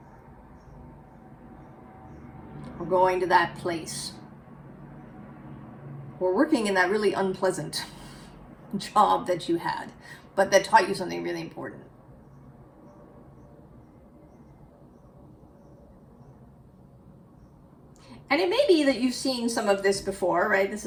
Or going to that place. Or working in that really unpleasant job that you had, but that taught you something really important. And it may be that you've seen some of this before, right? This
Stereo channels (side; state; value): both; identical; correlation 1.00